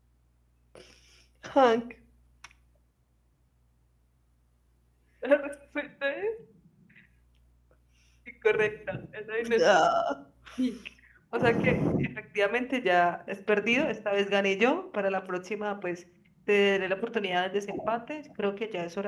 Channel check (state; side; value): identical; both; correlation 1.00